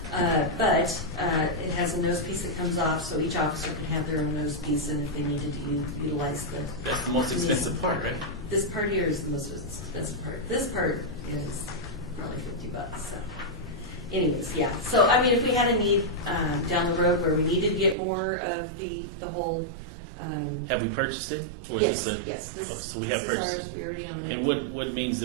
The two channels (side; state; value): left; drops out; at 17.9 s